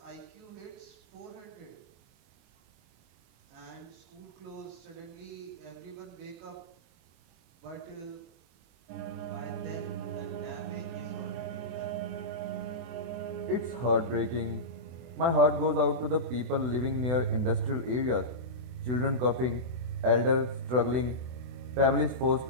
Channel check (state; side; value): late; left; 24 ms